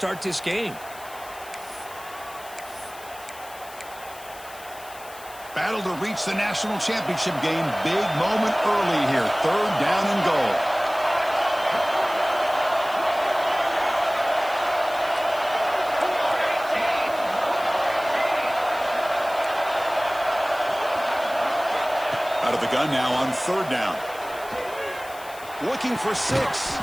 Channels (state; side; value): noise; left; hiss, 18 dB below the sound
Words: this game. Battle to reach the national championship game. Big moment early here. 3rd down and goal. Out of the gun now on 3rd down. Looking for 6.